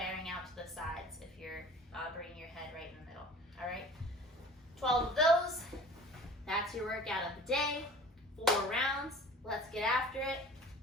out to the sides if you're bringing your head right in the middle. All right, 12 of those. That's your workout of the day. 4 rounds. Let's get after it.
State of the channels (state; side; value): normal; both; correlation 0.43